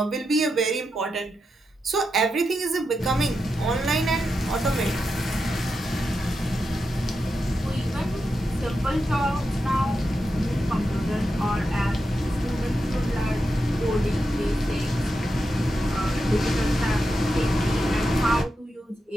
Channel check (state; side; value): normal; both; correlation 0.87